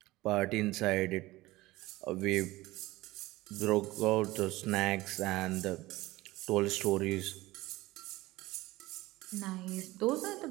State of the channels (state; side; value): quieter; left; 18.9 dB